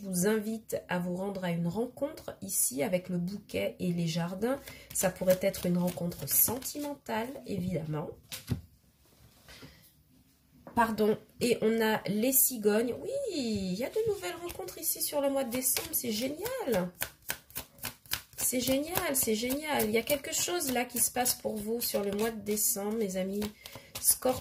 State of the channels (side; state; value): both; identical; correlation 1.00